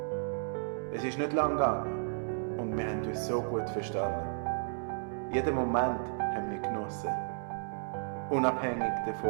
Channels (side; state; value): left; silent; digital silence